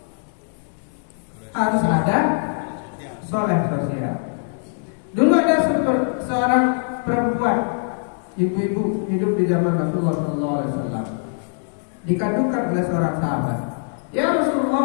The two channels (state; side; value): silent; right; digital silence